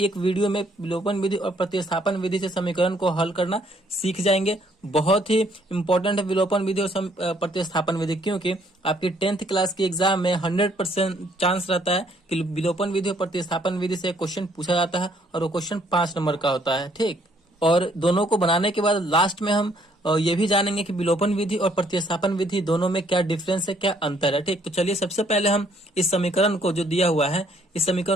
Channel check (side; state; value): both; normal; correlation 0.66